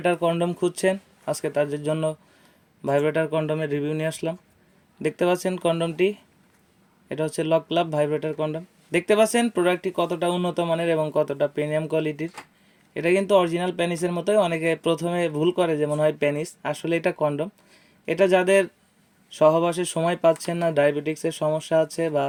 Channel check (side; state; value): both; identical; correlation 1.00